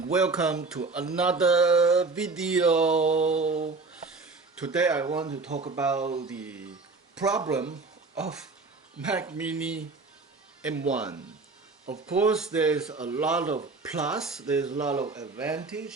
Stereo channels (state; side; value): quieter; left; 3.9 dB